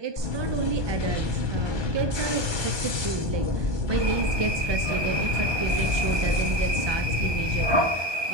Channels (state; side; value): late; left; 1.2 ms